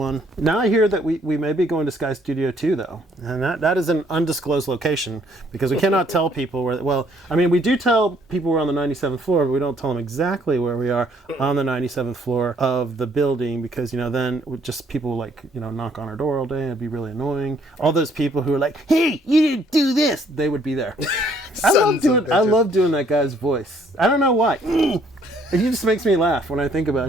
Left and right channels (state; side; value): normal; both; correlation 0.65